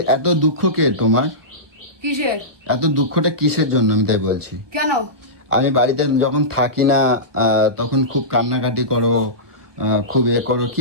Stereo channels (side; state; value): left; late; 1.2 ms